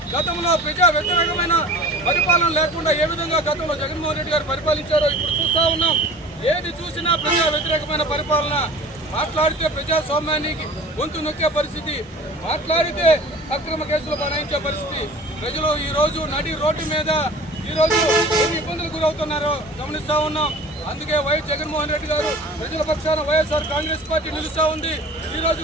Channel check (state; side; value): normal; both; correlation 0.42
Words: గతంలో ప్రజా వ్యతిరేకమైన పరిపాలన లేకుండా ఏ విధంగా గతంలో జగన్మోహన్ రెడ్డి గారు పరిపాలించారో ఇప్పుడు చూస్తూ ఉన్నాం. ఏది చూసినా ప్రజా వ్యతిరేకమైన పరిపాలన, మాట్లాడితే ప్రజాస్వామ్యానికి గొంతు నొక్కే పరిస్థితి, మాట్లాడితే అక్రమ కేసులు బనాయించే పరిస్థితి. ప్రజలు ఈ రోజు నడి రోడ్డు మీద ఈరోజు ఎన్ని ఇబ్బందులు గురవుతున్నారో గమనిస్తూ ఉన్నాం. అందుకే వైఎస్ జగన్మోహన్ రెడ్డి గారు ప్రజల పక్షాన వైఎస్ఆర్ కాంగ్రెస్ పార్టీ నిలుస్తూ ఉంది. ఈ రోజు